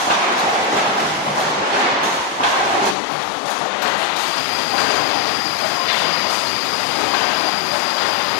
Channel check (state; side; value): drops out; right; at 3.0 s